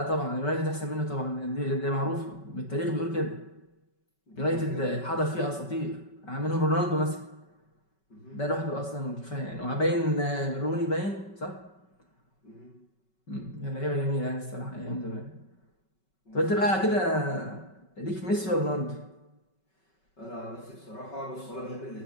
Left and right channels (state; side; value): late; right; 5.3 ms